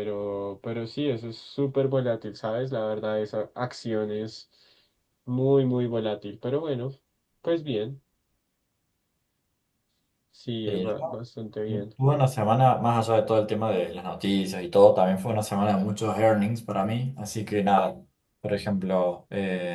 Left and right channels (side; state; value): both; identical; correlation 1.00